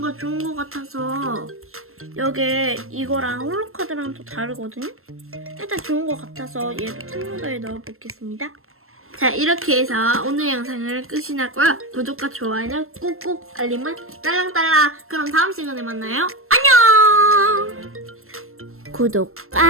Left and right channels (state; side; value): late; left; 0.62 ms